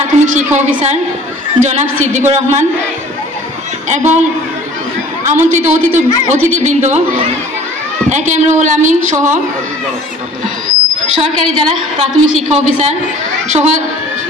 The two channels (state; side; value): normal; both; correlation 0.49